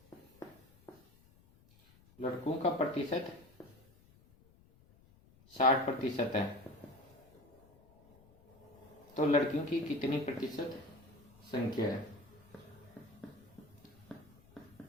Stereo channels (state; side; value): noise; left; rumble, 27 dB below the sound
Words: का प्रतिशत 60% है, तो लड़कियों की कितनी प्रतिशत संख्या है?